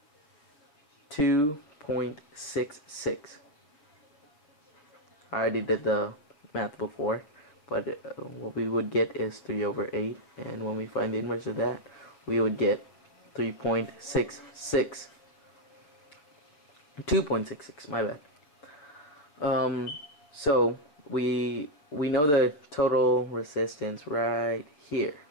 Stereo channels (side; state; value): right; late; 7.0 ms